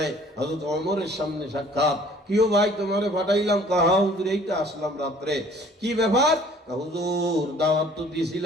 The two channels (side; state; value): both; normal; correlation 0.54